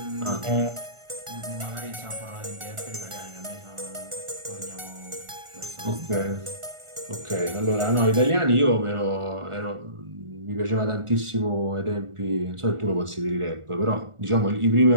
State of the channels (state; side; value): late; left; 1.4 ms